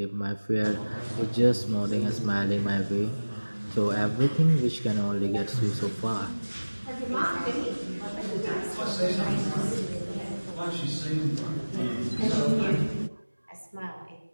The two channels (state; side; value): inverted; both; correlation -1.00